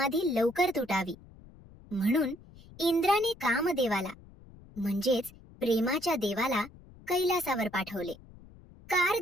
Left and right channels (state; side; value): noise; left; rumble, 22 dB below the sound